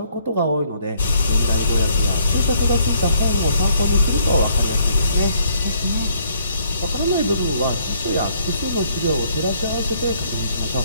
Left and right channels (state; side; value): inverted; both; correlation -0.67